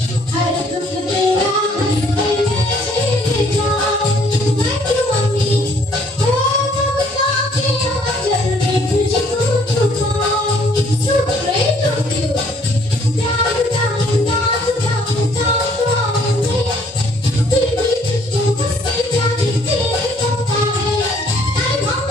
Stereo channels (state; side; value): normal; both; correlation 0.62